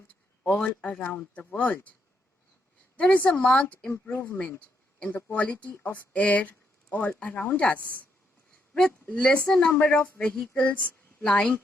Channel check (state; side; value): normal; both; correlation 0.77